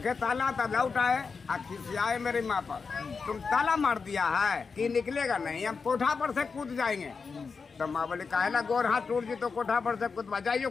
ताला तब लौट आए, खिसियाए मेरी माँ पर, तुम ताला मार दिया है कि निकलेगा नहीं, हम कोठा पर से कूद जाएंगे। तो माँ बोले काहेला गोर हाथ टूट जी तो कोठा पर से कूद बजाइयो,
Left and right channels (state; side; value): quieter; right; 5.1 dB